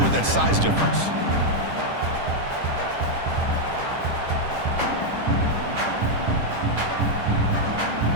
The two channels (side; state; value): left; late; 10 ms